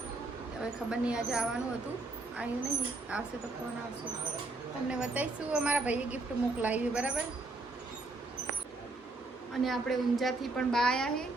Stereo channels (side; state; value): left; quieter; 3.2 dB